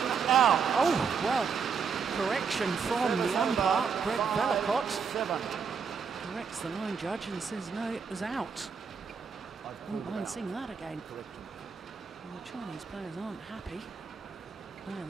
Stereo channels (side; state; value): left; quieter; 5.9 dB